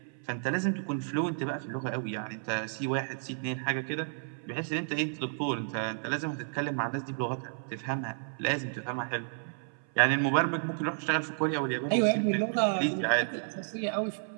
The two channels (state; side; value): silent; left; 57 dB below the other